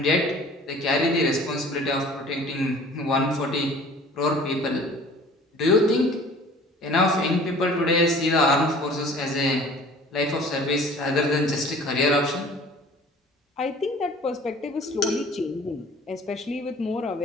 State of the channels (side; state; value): both; normal; correlation 0.48